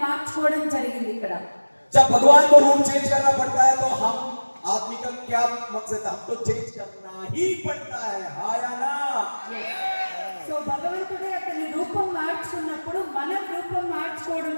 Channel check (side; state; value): both; inverted; correlation -1.00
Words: మార్చుకోవడం జరిగింది. ఇక్కడ जब भगवान को रूप चेंज करना पड़ता है तो हम आदमी का क्या मकसद है, हमको चेंज करना ही पड़ता है, हाँ या ना? సో భగవంతుడే అతని రూపం మార్చుకున్నప్పుడు మనం రూపం